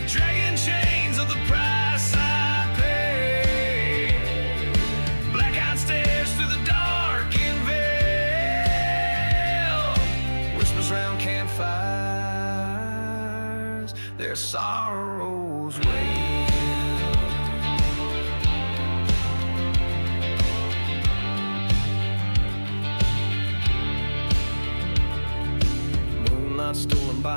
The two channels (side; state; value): both; inverted; correlation -1.00